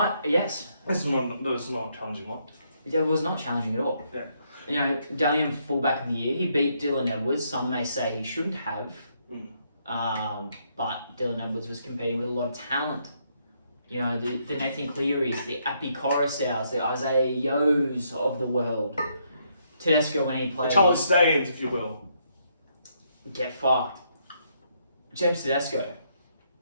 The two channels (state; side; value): inverted; both; correlation -0.74